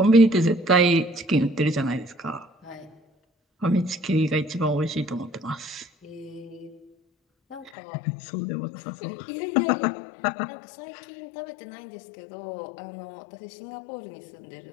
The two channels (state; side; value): drops out; right; at 7.7 s